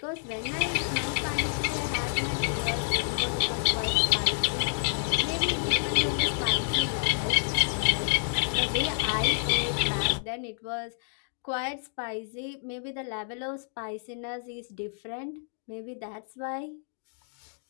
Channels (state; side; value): silent; right; digital silence